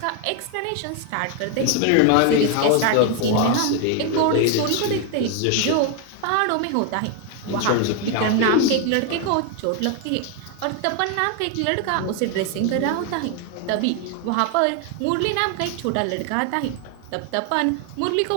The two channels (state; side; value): different; both; correlation 0.01